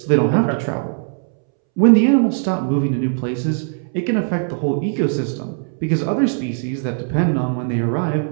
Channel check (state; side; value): silent; left; 66 dB below the other